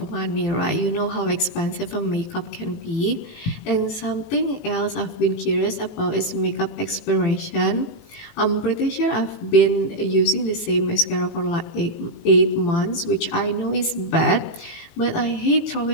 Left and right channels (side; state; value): right; late; 17 ms